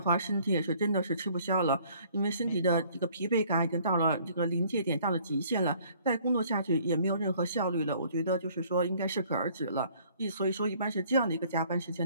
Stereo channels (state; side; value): inverted; both; correlation -0.58